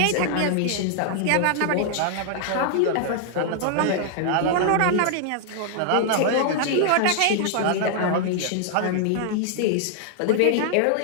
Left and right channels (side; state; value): both; different; correlation -0.01